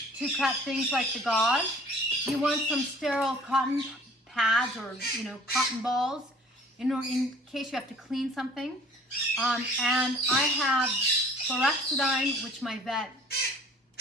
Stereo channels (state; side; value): normal; both; correlation 0.51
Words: to cut things like the Gauze. You want some sterile cotton pads or cotton balls in case you have to clean something. And I have chlorhexidine, which my vet